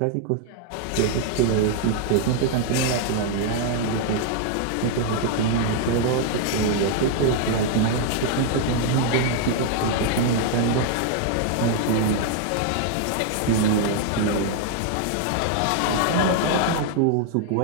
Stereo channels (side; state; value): both; different; correlation 0.00